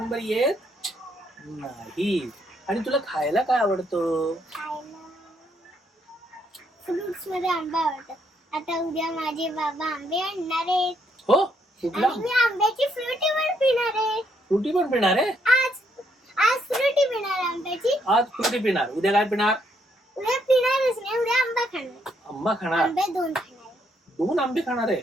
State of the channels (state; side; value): normal; both; correlation 0.73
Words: येत नाही. आणि तुला खायला काय आवडतं? खायला फ्रुट्स मध्ये आंबा आवडतो. आता उद्या माझे बाबा आंबे आणणार आहेत. हो, कुठला? आणि मी आंब्याची फ्रुटी पण पिणार आहे. फ्रुटी पण पिणार आहे? आज फ्रुटी पिणार आंब्याची. आज फ्रुटी पिणार, उद्या काय पिणार? उद्या पिणारच नाही, उद्या आंबा खाणार. आंबा खाणार? आंबे 2 खाणार. 2 आंबे खाणार आहे.